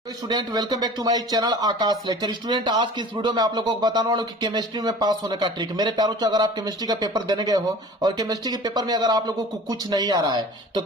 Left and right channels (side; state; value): both; normal; correlation 0.42